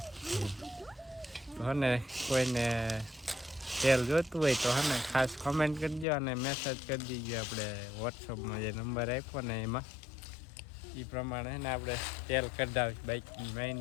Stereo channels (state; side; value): drops out; right; at 6.1 s